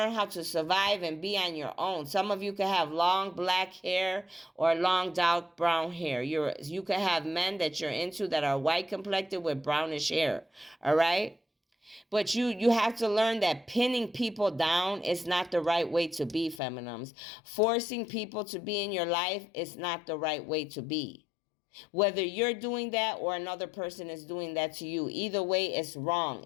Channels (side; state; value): right; drops out; at 16.6 s